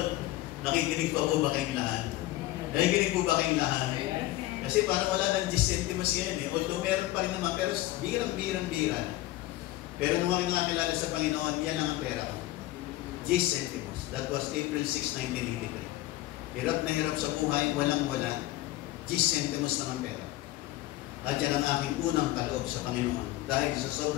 Nakikinig pa po ba kayong lahat? Nakikinig po ba kayong lahat? Kasi parang wala ng 10 centimos yan, eh. Although meron pa rin naman, pero birang-birang. Pero nung ako nakakilala sa Panginoon, yan lang ang pera ko. Gis Centimos. That was April 6, 1983. Hirap na hirap sa buhay, walang-wala. Gis Centimos lang ang pera. At yan ang aking unang kaloob sa Panginoon dahil sa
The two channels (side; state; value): right; quieter; 16.6 dB